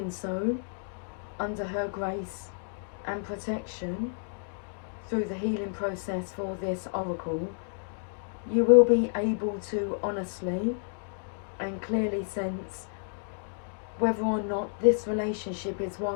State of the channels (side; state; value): right; silent; digital silence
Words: so, under her grace and protection, through the healing process for this oracle, you will be able to honestly and clearly sense whether or not this relationship is